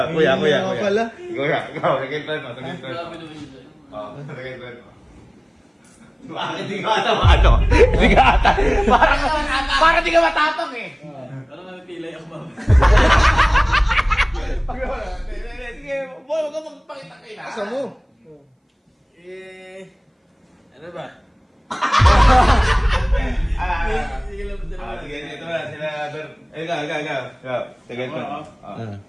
kuya. Ikaw, nagkintran mo. Bakit di ka ata Parang di ka matapang eh. Parang napipilay ako ba? Sige, huwag ka magpakita kayo na. Asa mo? Ano ba? Sige lang, ito na, sila, ikaw. Tigil ko.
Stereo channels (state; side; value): identical; both; correlation 1.00